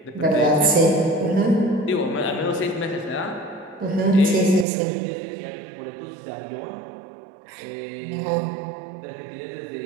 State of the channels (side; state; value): left; drops out; at 4.7 s